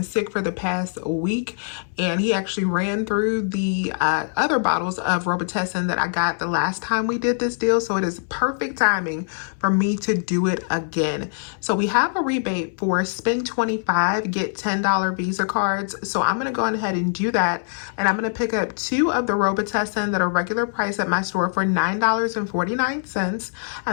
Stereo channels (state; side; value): silent; right; 63 dB below the other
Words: sick for the past week, and he actually ran through the other bottles of Robitussin that I got the last time we did this deal, so it is perfect timing for me to do it again. So we have a rebate for spend $25, get $10 Visa cards. So I'm going to go ahead and do that, and I'm going to pick up 2 of the Robitussin that are regular price at my store for $9.49,